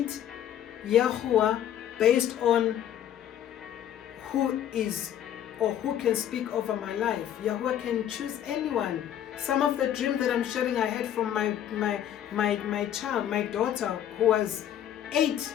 Yahuah based on who is or who can speak over my life. Yahuah can choose anyone. Some of the dreams that I'm sharing I had from my child, my daughter, who was 8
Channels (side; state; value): right; quieter; 10.6 dB